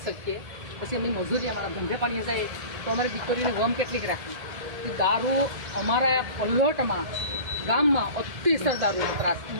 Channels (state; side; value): late; left; 1.7 ms